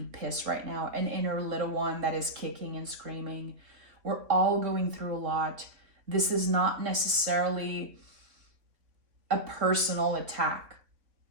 pissed right now, an inner little one that is kicking and screaming. We're all going through a lot. This is not necessarily a personal attack.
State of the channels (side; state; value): left; late; 3.8 ms